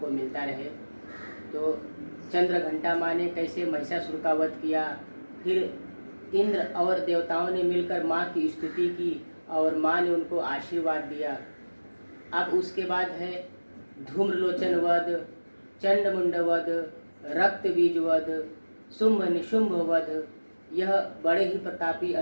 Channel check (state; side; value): inverted; both; correlation -1.00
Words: मिलता रहे। तो चंद्रघंटा माँ ने कैसे महिषासुर का वध किया, फिर इंद्र और देवताओं ने मिलकर माँ की स्तुति की और माँ ने उनको आशीर्वाद दिया। अब उसके बाद है धूम्रलोचन वध, चंडमुंड वध, रक्त बीज वध, शुंभ निशुंभ वध। यह बड़े ही प्रतापी